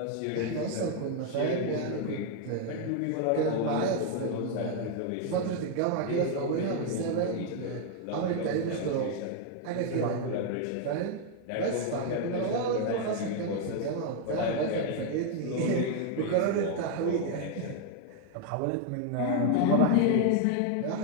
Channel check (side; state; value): both; different; correlation 0.00